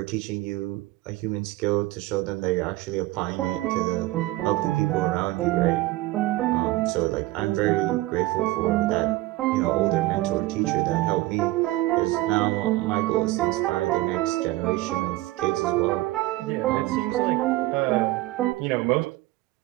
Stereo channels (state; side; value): quieter; left; 18.6 dB